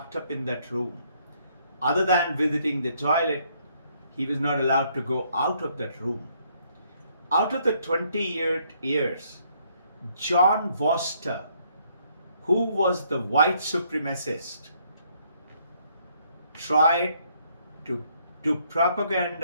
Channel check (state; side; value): inverted; both; correlation -0.69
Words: up in that room. Other than visiting the toilet, he was not allowed to go out of that room. Out of the 28 years, John Vorster, who was the white supremacist, tried to do